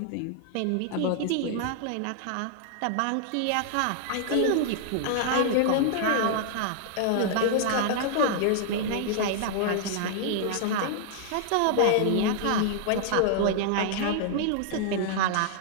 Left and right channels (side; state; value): both; different; correlation -0.01